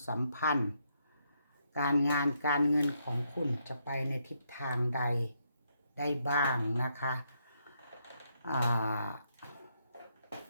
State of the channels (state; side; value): inverted; both; correlation -0.77